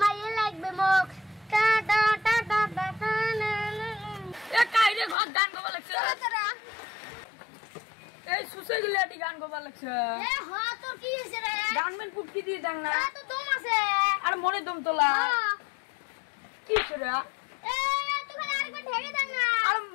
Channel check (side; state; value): right; drops out; at 5.2 s